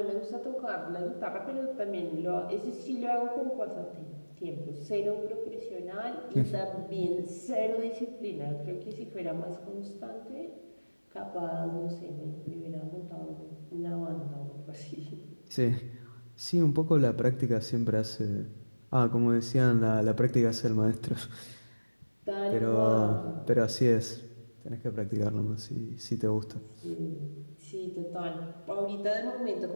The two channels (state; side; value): inverted; both; correlation -1.00